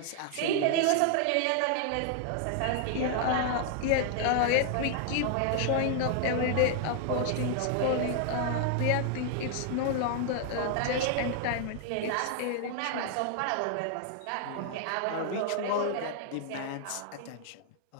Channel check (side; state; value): both; different; correlation 0.00